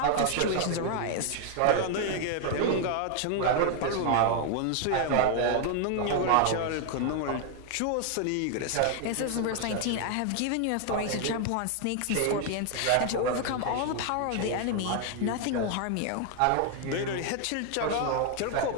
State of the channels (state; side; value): different; both; correlation 0.00